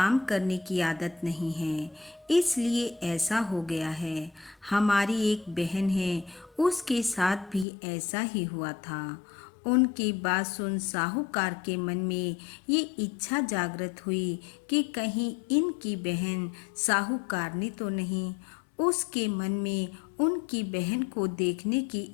करने की आदत नहीं है, इसलिए ऐसा हो गया है। हमारी एक बहन है, उसके साथ भी ऐसा ही हुआ था। उनकी बात सुन साहूकार के मन में ये इच्छा जागृत हुई कि कहीं इनकी बहन साहूकारनी तो नहीं। उसके मन में उनकी बहन को देखने की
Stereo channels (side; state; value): right; drops out; at 7.7 s